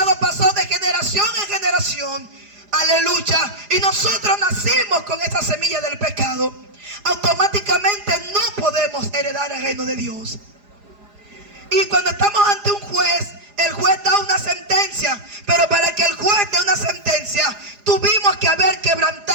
pasó de generación en generación. Aleluya. Y nosotros nacimos con esta semilla del pecado. Automáticamente no podemos heredar el reino de Dios. Y cuando estamos ante un juez, el juez da una sentencia, pero para que el juez dé una sentencia, tuvimos que haber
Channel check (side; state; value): left; late; 4.9 ms